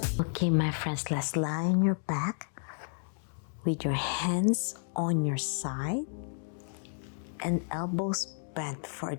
Okay, my friends, let's lie on your back with your hands on your side and elbows bent for a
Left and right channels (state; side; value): silent; right; digital silence